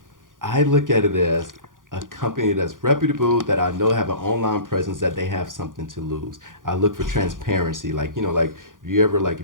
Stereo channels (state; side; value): late; left; 0.89 ms